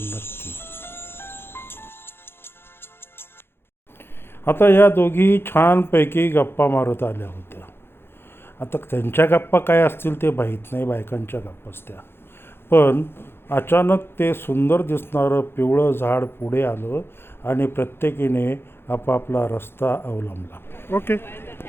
नक्की. आता या दोघी छानपैकी गप्पा मारत आल्या होत्या. आता त्यांच्या गप्पा काय असतील ते माहीत नाही, बायकांच्या गप्पाच त्या. पण अचानक ते सुंदर दिसणारं पिवळं झाड पुढे आलं आणि प्रत्येकीने आपापला रस्ता अवलंबला. ओके,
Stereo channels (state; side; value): late; right; 0.11 ms